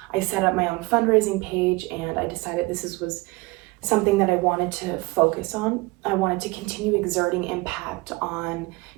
I set up my own fundraising page and I decided this was something that I wanted to focus on. I wanted to continue exerting impact on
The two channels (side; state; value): left; quieter; 23.7 dB